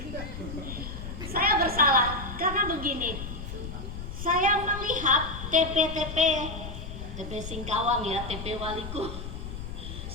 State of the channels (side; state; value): left; noise; rumble, 8 dB below the sound